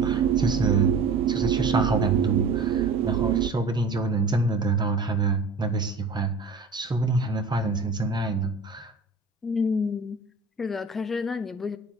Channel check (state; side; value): quieter; left; 3.9 dB